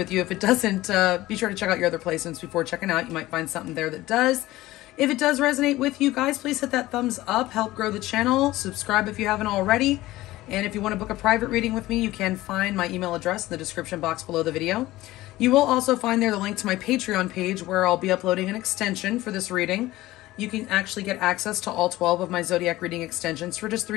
you. If it doesn't, be sure to check out your other placements before checking out. You might find something there that does. If it does resonate with you guys, please hit that thumbs up, help grow the channel, subscribe if you haven't already. And if you want to book a private reading with me, you can find my email address in the description box below the video. You will also find there the link to my Patreon page where I'll be uploading an extension for this reading. You can actually get access to all 12 of my zodiac reading extensions for just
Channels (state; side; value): quieter; right; 17.2 dB